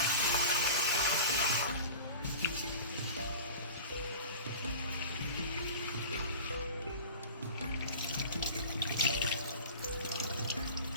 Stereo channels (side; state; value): both; inverted; correlation -0.37